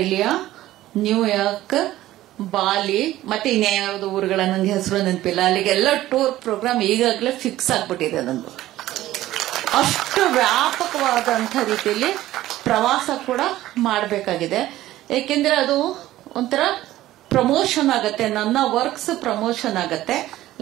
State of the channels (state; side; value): quieter; left; 15.1 dB